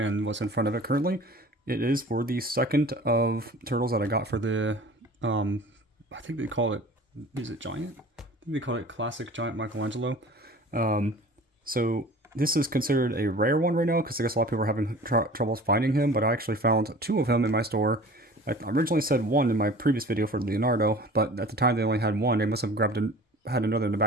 what's in front of it currently, it is for the second of turtles that I got for the, I think they call it, is it Giant? I think they call it Classic Giant Michelangelo. So this is considered a rare one right now because I guess a lot of people are having troubles finding him, but I actually found two of him in my store. I originally said one in my previous video for Leonardo, but at the time they only had one. They must have had another in the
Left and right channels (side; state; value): both; normal; correlation 0.43